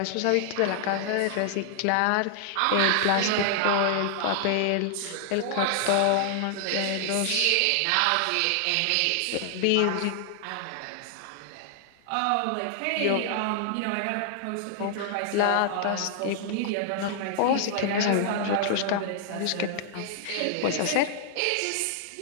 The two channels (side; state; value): both; different; correlation -0.01